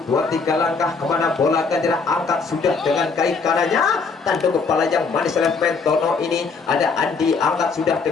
2, 3 langkah kemana bola akan angkat sudah dengan kaki kanannya, tanduk kepala yang manis oleh pemain Tono ini, ada Andi angkat sudah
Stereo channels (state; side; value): quieter; right; 4.7 dB